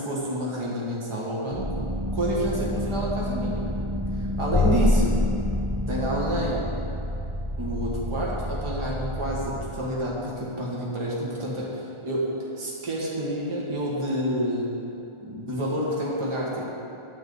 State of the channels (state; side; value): late; left; 1.4 ms